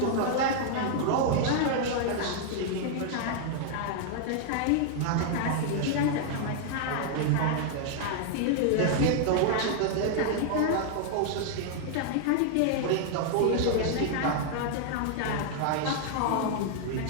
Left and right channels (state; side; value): different; both; correlation 0.00